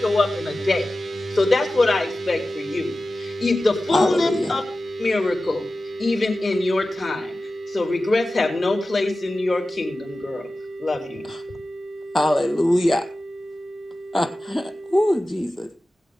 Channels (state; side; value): normal; both; correlation 0.95